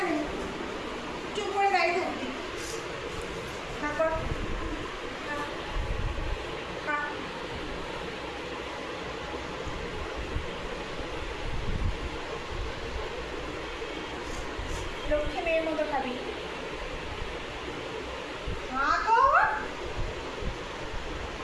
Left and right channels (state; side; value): identical; both; correlation 1.00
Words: চুপ করে দাঁড়িয়ে থাকবি। খা কর, খা, খা। লক্ষ্মী মেয়ের মতো খাবি। খা কর।